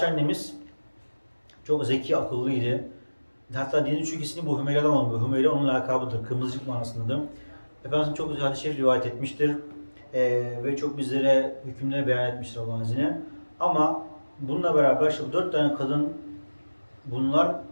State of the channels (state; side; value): inverted; both; correlation -1.00